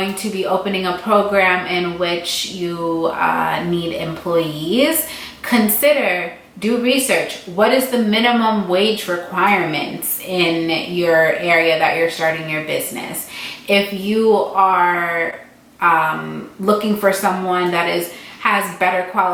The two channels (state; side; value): identical; both; correlation 1.00